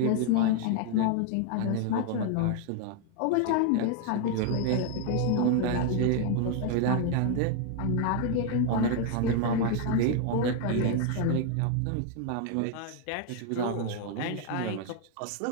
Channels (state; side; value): different; both; correlation 0.00